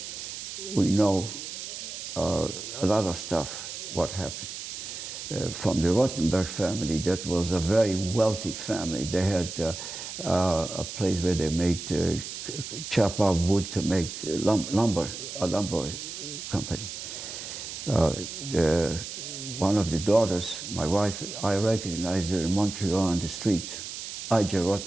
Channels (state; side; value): noise; right; hiss, 8 dB below the sound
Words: we know a lot of stuff, what happened. From the Rothenberg family, that was a very wealthy family. They had a place where they made chop up wood to make lumber, a lumber company. one of the daughters, my wife, I recognized her in Montreal on the street, I.J.